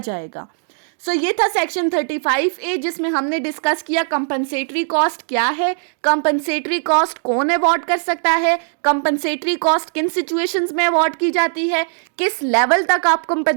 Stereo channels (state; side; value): silent; left; digital silence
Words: जाएगा। सो ये था सेक्शन 35A, जिसमें हमने डिस्कस किया कंपनसेटरी कॉस्ट क्या है, कंपनसेटरी कॉस्ट कौन अवॉर्ड कर सकता है, कंपनसेटरी कॉस्ट किन सिचुएशंस में अवॉर्ड की जाती है, किस लेवल तक आप